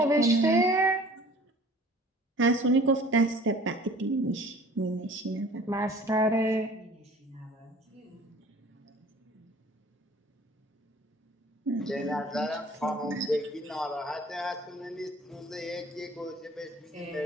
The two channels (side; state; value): both; normal; correlation 0.48